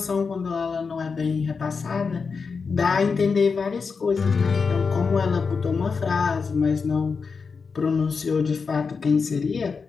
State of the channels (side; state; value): right; quieter; 5.2 dB